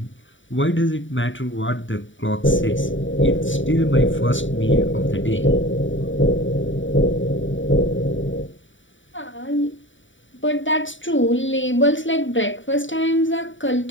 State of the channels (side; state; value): right; late; 0.55 ms